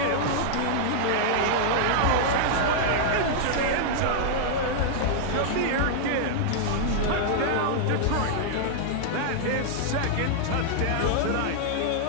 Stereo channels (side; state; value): both; different; correlation -0.01